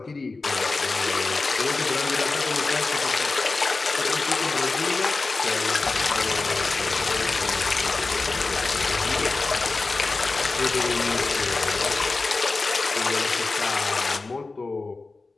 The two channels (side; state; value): right; quieter; 3.7 dB